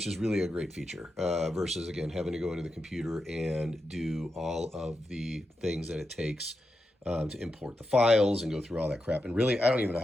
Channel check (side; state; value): both; normal; correlation 0.88